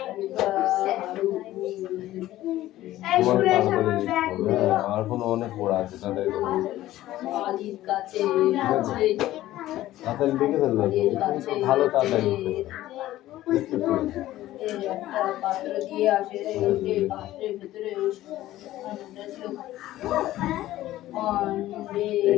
আমার কোনো অনেক পড়া আছে, তাড়াতাড়ি লিখে ফেলবো, ভালো তাড়াতাড়ি পাত্র দিয়ে আসে, পাত্রের ভেতরে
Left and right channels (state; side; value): quieter; right; 15.0 dB